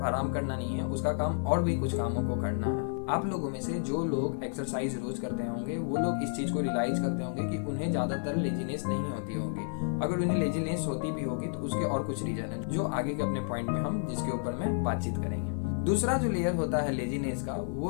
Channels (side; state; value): right; silent; 57 dB below the other